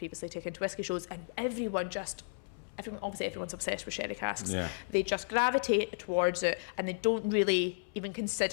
taken to whiskey shows, and everyone's obsessed with sherry casks. They just gravitate towards it, and they don't really even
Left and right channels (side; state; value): right; silent; 55 dB below the other